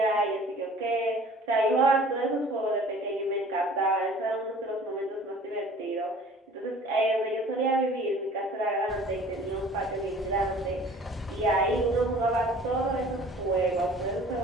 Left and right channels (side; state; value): both; normal; correlation 0.48